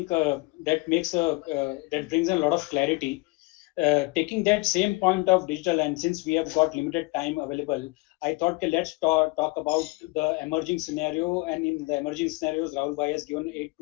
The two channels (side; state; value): right; quieter; 25.6 dB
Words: that brings a lot of clarity. Taking that same point of digital, and since we have got limited time available, I thought, okay, let's talk about the emerging scenario. And in the emerging scenarios, Rahul bhai has given 8